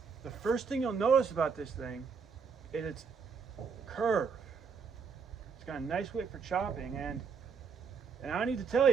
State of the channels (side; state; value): left; quieter; 5.7 dB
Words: The first thing you'll notice about this thing is its curve. It's got a nice width for chopping, and I need to tell